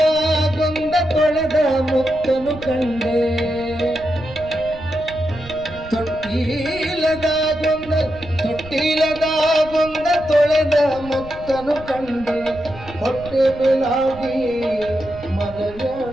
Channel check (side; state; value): right; noise; rumble, 16 dB below the sound